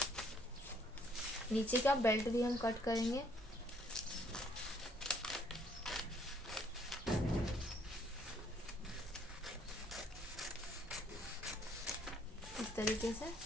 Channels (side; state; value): both; normal; correlation 0.64